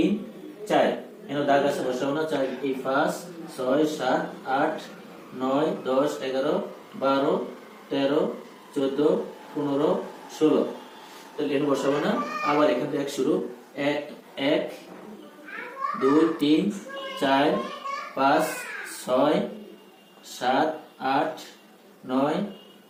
4 এখানে দাগ আছে, বসাবো না। 4 এই 5 6 7 8 9 10 11 12 13 14 15 16, তাহলে এখানে বসাবো না। আবার এখান থেকে এক শুরু, 1 1 2 3 4 5 6 7 8 9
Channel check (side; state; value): both; identical; correlation 1.00